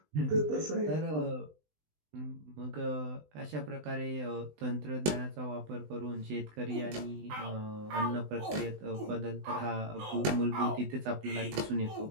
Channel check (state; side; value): late; left; 20 ms